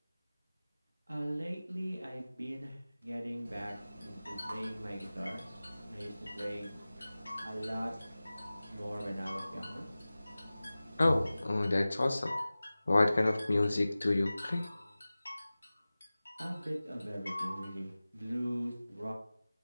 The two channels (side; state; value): both; inverted; correlation -0.98